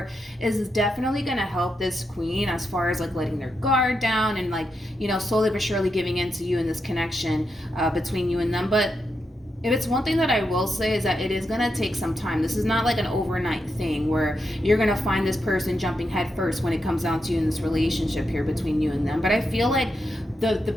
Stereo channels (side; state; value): both; normal; correlation 0.85